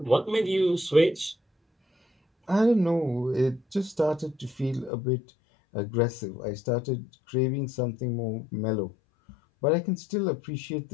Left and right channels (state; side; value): drops out; right; at 4.9 s